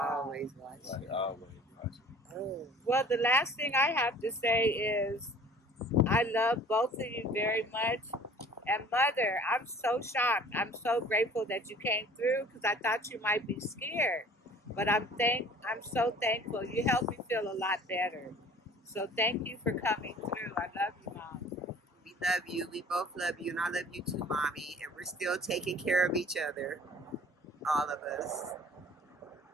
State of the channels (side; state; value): both; normal; correlation 0.49